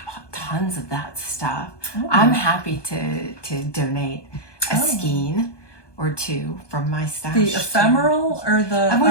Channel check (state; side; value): late; right; 1.2 ms